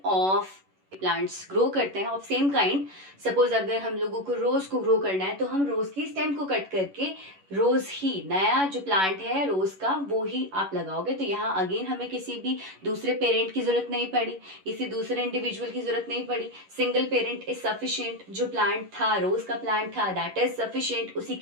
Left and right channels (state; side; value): late; left; 11 ms